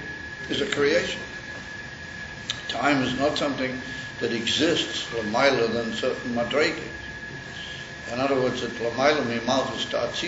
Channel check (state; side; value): identical; both; correlation 1.00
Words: creation. Time is not something that exists l'mayla than certain madregis. In other words, at l'mayla mi malchus